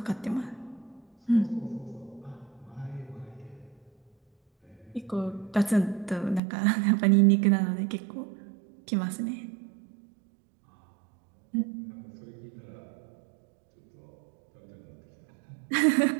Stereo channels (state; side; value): drops out; left; at 6.4 s